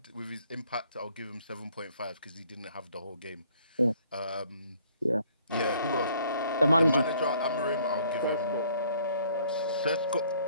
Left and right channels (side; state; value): both; inverted; correlation -0.61